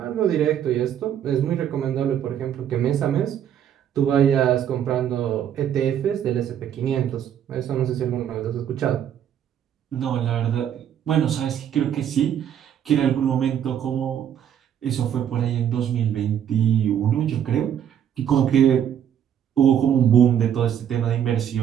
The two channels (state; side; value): quieter; left; 9.5 dB